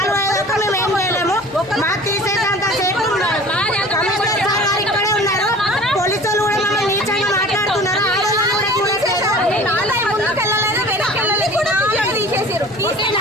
అయ్యేదాకా మేము ఏం చేయలేము. మాకు తీసేదంత సేపు కమిషనర్ సార్ గారు ఇక్కడే ఉన్నారు. పోలీసులు కూడా మమ్మల్ని నీచంగా మాట్లాడుతున్నారు. ఆడవాళ్ళు కూడా చూడట్లేదు. ముందుకెళ్ళలేదు, వెనకెళ్ళలేదు కూడా తీసేసారు.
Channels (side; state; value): right; noise; hum, 26 dB below the sound